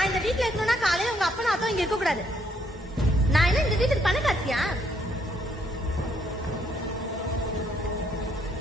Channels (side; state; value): both; normal; correlation 0.70